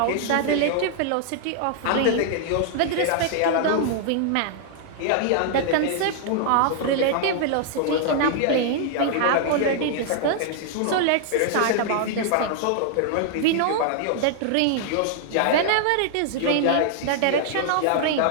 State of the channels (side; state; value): both; different; correlation -0.01